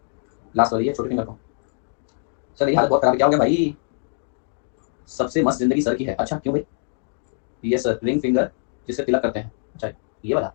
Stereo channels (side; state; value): right; silent; 63 dB below the other